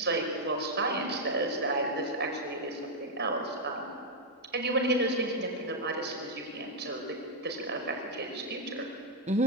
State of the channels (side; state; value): both; normal; correlation -0.01